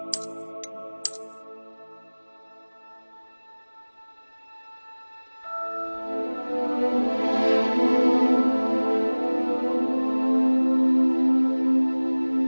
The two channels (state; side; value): inverted; both; correlation -1.00